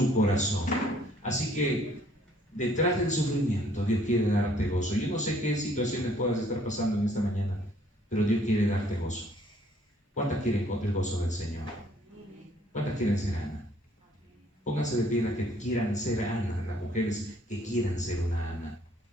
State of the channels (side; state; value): both; normal; correlation 0.62